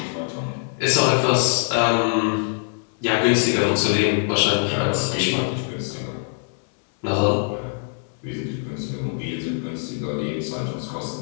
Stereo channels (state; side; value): silent; right; 63 dB below the other